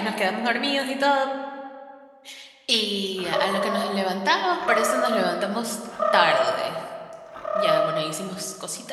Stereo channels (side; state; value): both; identical; correlation 1.00